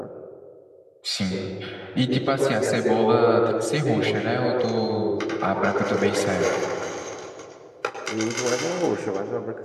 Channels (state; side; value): identical; both; correlation 1.00